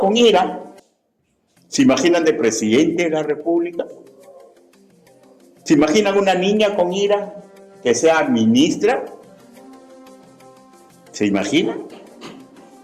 ira, ¿se imaginan de presidente de la República? ¿Se imaginan una niña con ira que sea ministra? ¿Se imaginan?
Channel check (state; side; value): identical; both; correlation 1.00